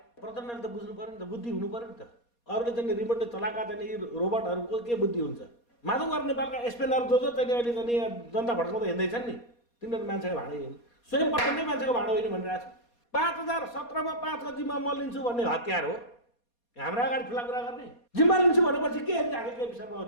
प्रचण्डले त बुझ्नु पर्यो नि त बुद्धि हुनु पर्यो नि त अरूले चाहिँ रिमोटले चलाएका चाहिँ यी रोबोटहरूको के बुद्धि हुन्छ माधव कुमार नेपालका एसपेनहरू जो चाहिँ अहिले चाहिँ जनता भड्काउँदा हिँड्दैछन् नि तिनीहरू मान्छेको भाँडो होइन स्वयं प्रचण्डै मान्छेको भाँडो होइन भनिरहेको छ 2017मा 5 को जिम्मा म लिन्छु भन्ने हतियार हो हाम्रो अगाडि ठुला कुरा गर्ने जिम्मा लिन्छु भनेपछि के के विषयमा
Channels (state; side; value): late; right; 4.2 ms